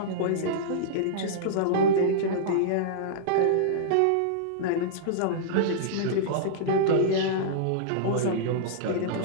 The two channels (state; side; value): different; both; correlation -0.03